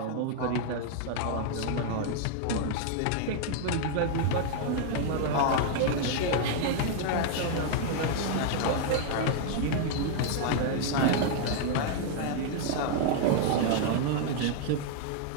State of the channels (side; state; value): both; different; correlation 0.00